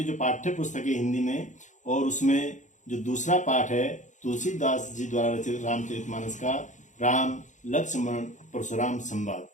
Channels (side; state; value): right; late; 0.36 ms